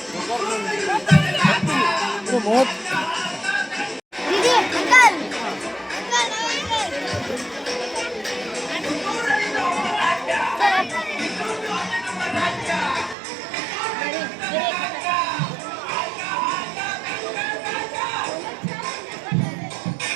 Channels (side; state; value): left; drops out; at 13.2 s